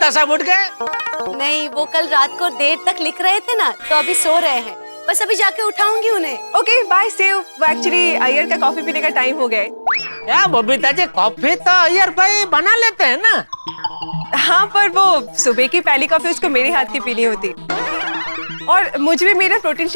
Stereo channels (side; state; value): both; inverted; correlation -1.00